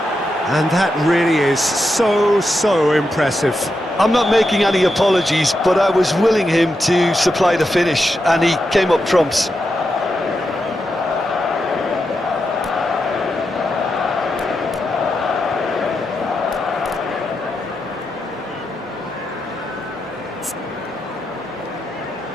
And that really is so impressive. I'm not making any apologies, but I was willing him to supply the finish, and he came up trumps.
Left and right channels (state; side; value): normal; both; correlation 0.86